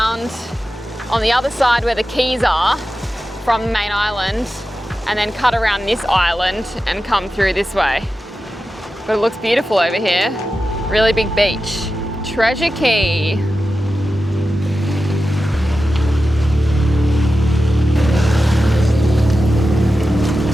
on the other side where the keys are from the main island, and then cut around this island and come through this way. But it looks beautiful over here. Really big beach. Treasure Cay.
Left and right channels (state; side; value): normal; both; correlation 0.92